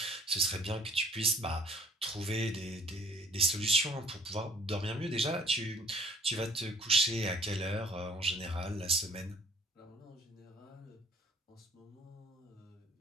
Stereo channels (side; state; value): both; normal; correlation 0.57